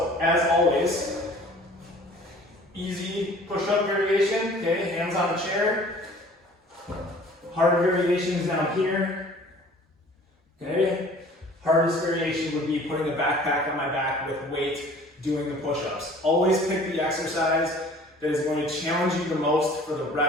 as always, easy push-up variation, okay, hands on the chair. Harder variation is down here, okay. Hardest variation would be putting a backpack on my back with weight, doing the push-ups. Always pick the exercise that is going to challenge you the most for the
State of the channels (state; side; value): normal; both; correlation 0.49